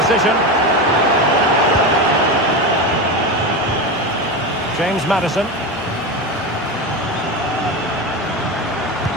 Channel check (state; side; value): normal; both; correlation 0.20